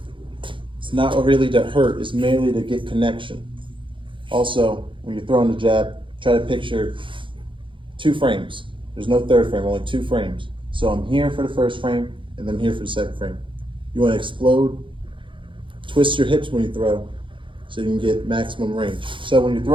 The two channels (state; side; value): late; left; 0.24 ms